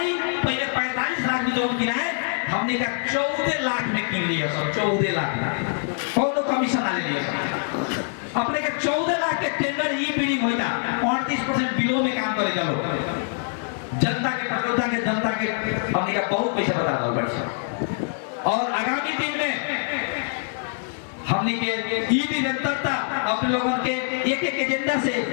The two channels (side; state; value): right; silent; 62 dB below the other